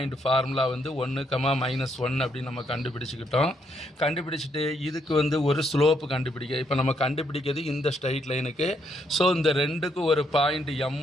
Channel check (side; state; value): both; normal; correlation 0.74